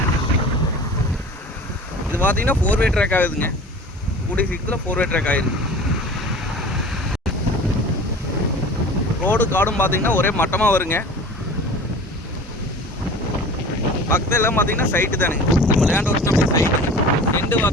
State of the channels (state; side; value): normal; both; correlation 0.40